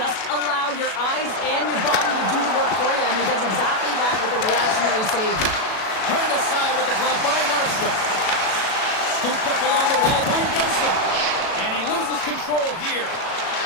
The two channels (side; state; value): right; late; 37 ms